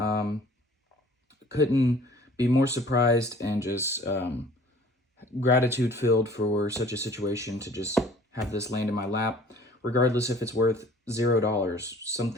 Couldn't be more surprised and just gratitude filled for such a situation to just have this land in my lap, regardless if it's worth $0.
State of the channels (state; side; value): normal; both; correlation 0.51